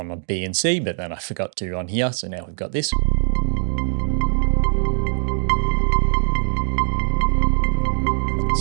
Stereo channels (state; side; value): silent; left; digital silence